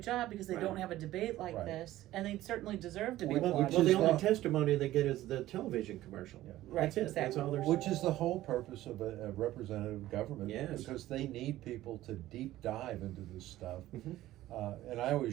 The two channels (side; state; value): left; quieter; 15.1 dB